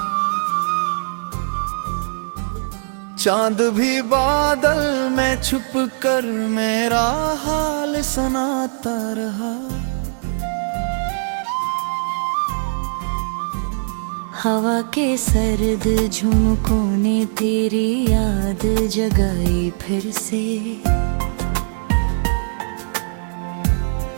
चांद भी बादल में छुप कर मेरा हाल सुनाता रहा हवा के सर्द झुमकों ने तेरी याद जगाई फिर से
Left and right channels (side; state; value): left; silent; 65 dB below the other